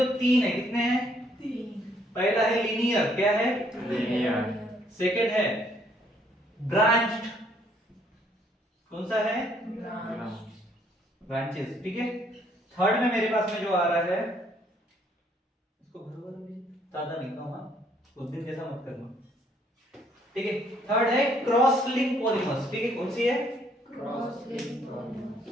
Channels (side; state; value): both; normal; correlation 0.66